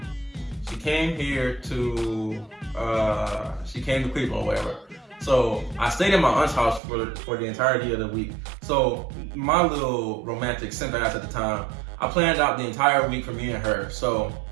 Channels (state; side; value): drops out; left; at 6.8 s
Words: here to, she came to Cleveland or whatever. So I stayed in my aunt's house for the entirety of the week. So my little romantic simp ass at the time, I planned out the entire week for me and her. So